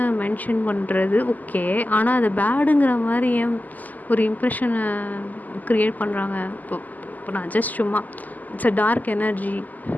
மென்ஷன் பண்ணுறது ஓகே. ஆனால் அதை பேடுங்கிற மாதிரி ஏன் ஒரு இம்ப்ரெஷனை க்ரியேட் பண்ணுறாங்க. இப்போ இப்போ நான் ஜஸ்ட் சும்மா இட்ஸ் அ டார்க் எனர்ஜி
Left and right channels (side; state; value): right; late; 0.081 ms